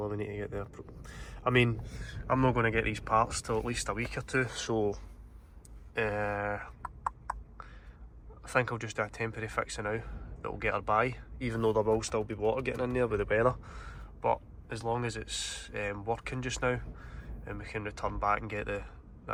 her we need to get there? I mean, I'm not going to get these parts till at least a week or 2, so think I'll just do a temporary fix now that will get her by, even though there will still be water getting in there with the weather. But as long as it's working just now, and we can return back and get the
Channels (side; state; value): both; identical; correlation 1.00